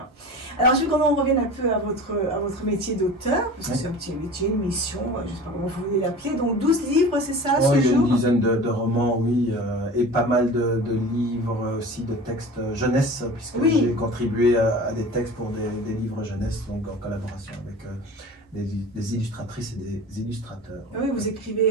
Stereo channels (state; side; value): normal; both; correlation 0.37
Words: Alors, je veux qu'on revienne un peu à votre métier d'auteur, parce que c'est un petit métier, une mission, je ne sais pas comment vous voulez l'appeler. Donc, 12 livres, c'est ça, ce jour ? Il y a une dizaine de romans, oui, et pas mal de livres aussi, de textes jeunesse, puisque j'ai contribué à des textes pour des livres jeunesse, donc en collaboration avec des illustratrices et des illustrateurs. Oui, vous